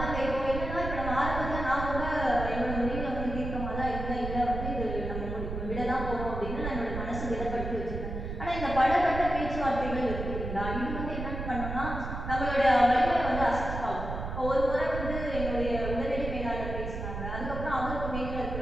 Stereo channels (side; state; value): right; noise; rumble, 5 dB below the sound